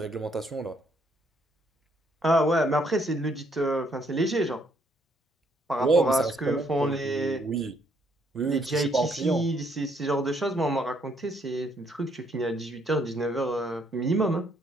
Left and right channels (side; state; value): both; normal; correlation 0.70